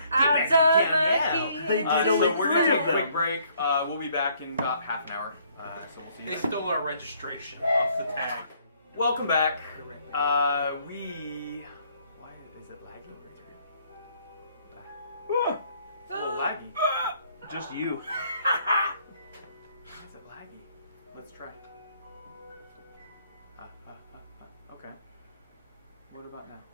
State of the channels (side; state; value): both; inverted; correlation -0.64